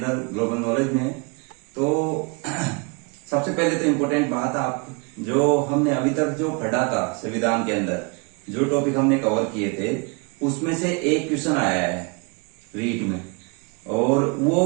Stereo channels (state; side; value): quieter; left; 32.4 dB